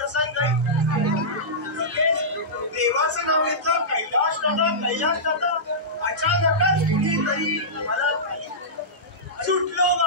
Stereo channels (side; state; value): both; normal; correlation -0.16